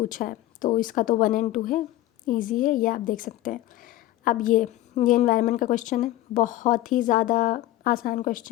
है, तो इसका तो 1 एंड 2 है, ईजी है, ये आप देख सकते हैं। अब ये एनवायरनमेंट का क्वेश्चन है, बहुत ही ज़्यादा आसान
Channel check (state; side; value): quieter; right; 15.6 dB